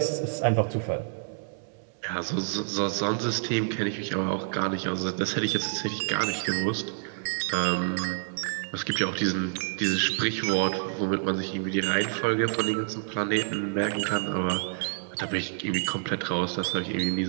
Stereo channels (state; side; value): silent; left; 58 dB below the other